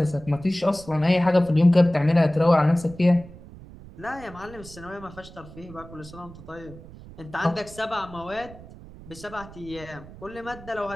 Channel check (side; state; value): right; noise; rumble, 18 dB below the sound